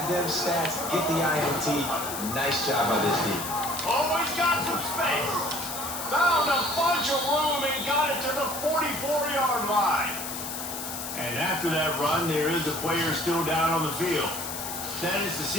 them stats, get the INT. Nice job by this D. Always got some space. Found a bunch of room and got it to the 44-yard line. And after that run, there is a player still down on the field. That is the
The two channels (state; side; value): noise; left; hiss, 6 dB below the sound